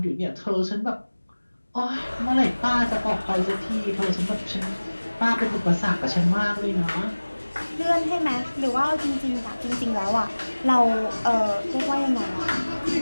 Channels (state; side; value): inverted; both; correlation -1.00